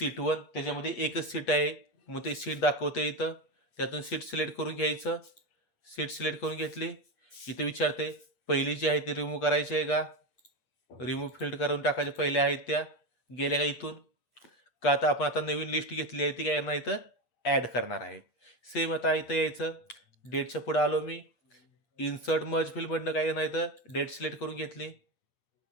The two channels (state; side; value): late; right; 8.2 ms